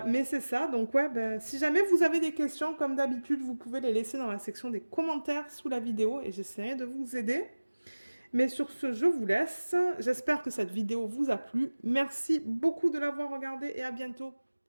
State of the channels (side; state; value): both; inverted; correlation -1.00